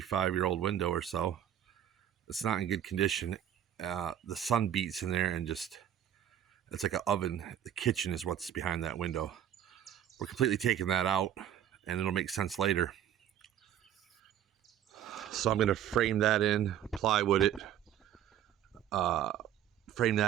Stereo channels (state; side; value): quieter; left; 10.6 dB